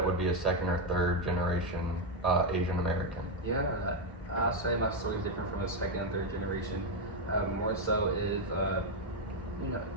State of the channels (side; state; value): both; normal; correlation 0.04